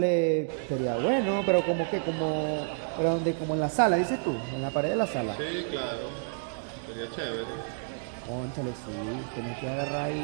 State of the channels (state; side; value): silent; left; digital silence